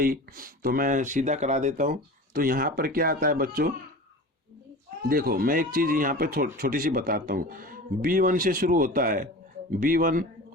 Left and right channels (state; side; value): normal; both; correlation 0.34